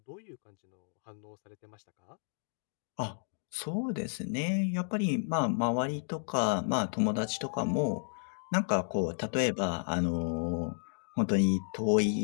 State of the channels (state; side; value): silent; right; digital silence